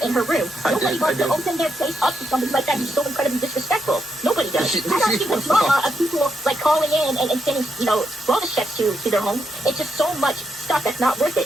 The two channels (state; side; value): normal; both; correlation 0.82